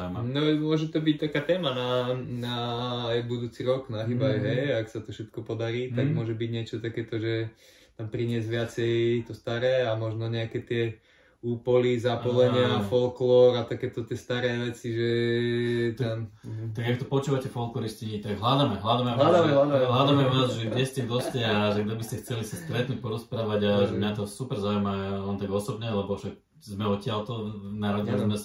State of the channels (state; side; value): identical; both; correlation 1.00